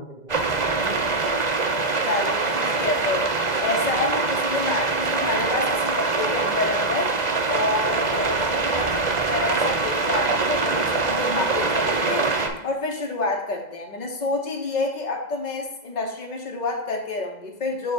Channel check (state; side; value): late; right; 2.0 ms